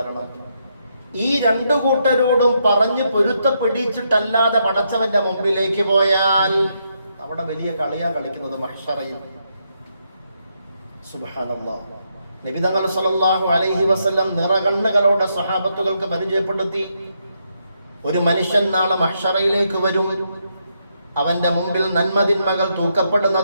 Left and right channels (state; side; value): inverted; both; correlation -0.78